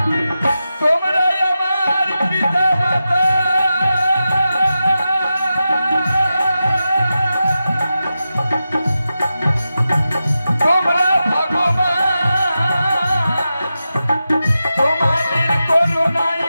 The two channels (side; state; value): both; inverted; correlation -0.91